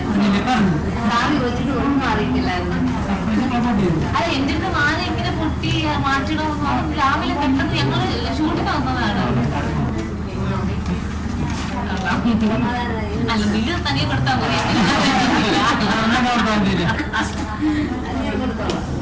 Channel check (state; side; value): identical; both; correlation 1.00